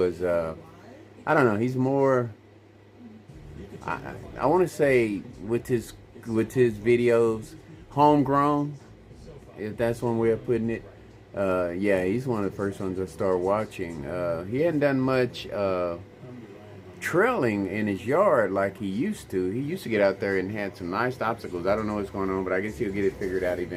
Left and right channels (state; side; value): identical; both; correlation 1.00